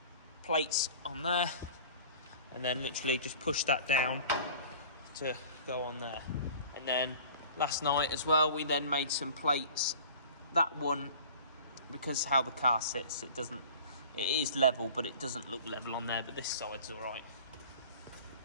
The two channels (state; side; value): inverted; both; correlation -0.44